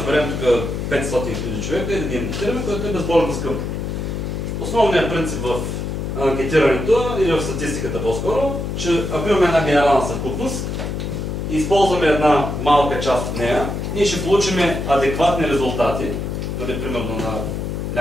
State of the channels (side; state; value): left; noise; hum, 3 dB below the sound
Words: тук 500 000 човека и да ги анкетираме, което е безбожно скъпо. Основният принцип в анкетирането или в статистиката по-скоро, че ако имаме една генерална съвкупност и използваме една малка част от нея, ние ще получим адекватни резултати, дали примерно на